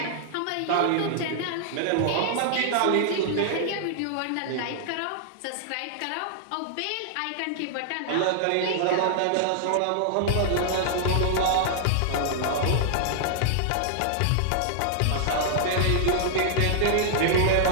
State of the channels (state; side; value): different; both; correlation -0.01